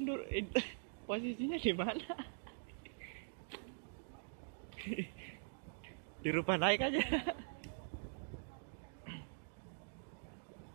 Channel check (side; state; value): left; silent; digital silence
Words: posisinya di mana? Dirubah naik aja.